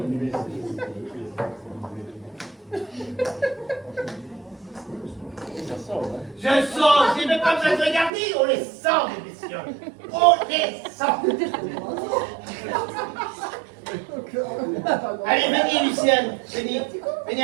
Je sens, j'ai même pas besoin de regarder, on les sent, les messieurs. On les sent. Allez, venez, Lucienne,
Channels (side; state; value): left; drops out; at 8.1 s